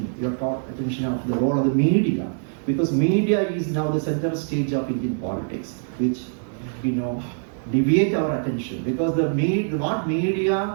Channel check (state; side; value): silent; left; digital silence